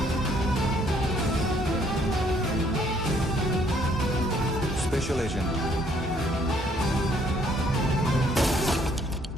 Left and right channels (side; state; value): both; normal; correlation 0.65